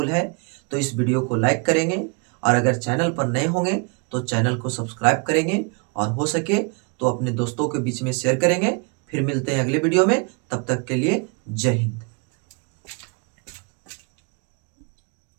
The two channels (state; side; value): quieter; left; 34.6 dB